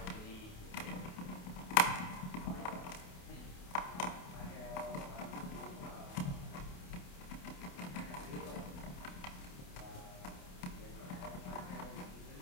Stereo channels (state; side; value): late; right; 28 ms